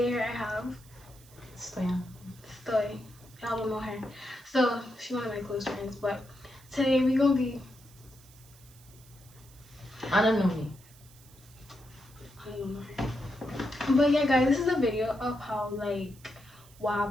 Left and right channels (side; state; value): right; noise; hiss, 24 dB below the sound